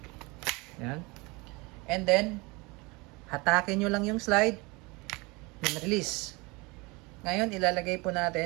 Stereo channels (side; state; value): left; quieter; 25.7 dB